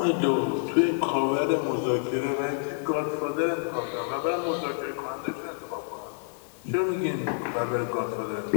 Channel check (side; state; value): right; silent; 59 dB below the other